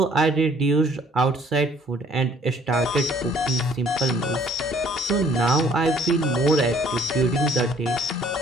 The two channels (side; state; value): both; normal; correlation 0.59